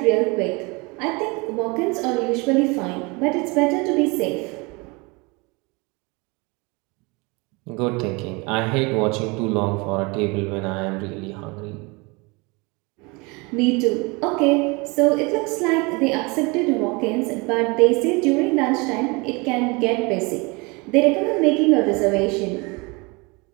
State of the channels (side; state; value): left; quieter; 27.5 dB